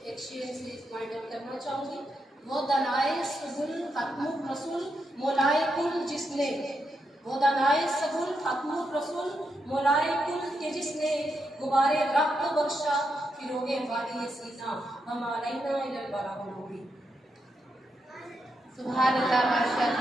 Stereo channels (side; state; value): both; normal; correlation 0.83